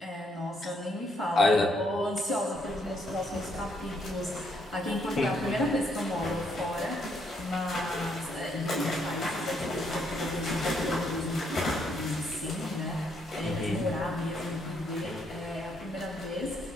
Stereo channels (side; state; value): both; normal; correlation 0.73